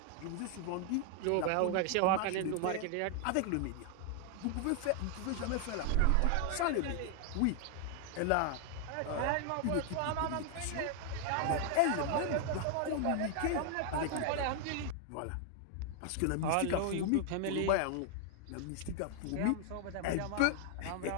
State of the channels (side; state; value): both; different; correlation 0.00